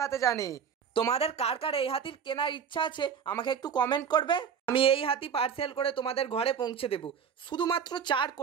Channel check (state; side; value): quieter; left; 7.2 dB